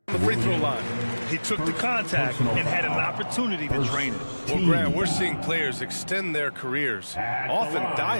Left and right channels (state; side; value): inverted; both; correlation -1.00